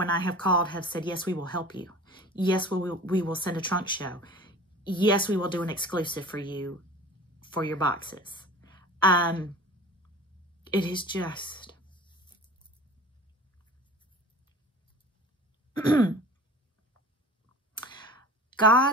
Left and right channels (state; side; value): normal; both; correlation 0.40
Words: I have called, have said, yes, we will help you. Yes, we will send a trunk show. Yes, we will do an exclusive for you for your boxes. It is just...